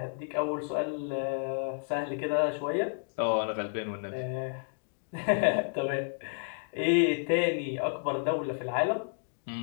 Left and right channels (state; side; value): silent; right; digital silence